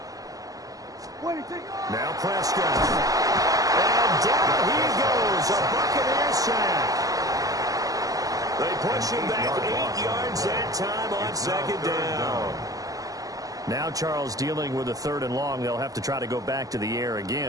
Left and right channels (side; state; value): left; late; 0.17 ms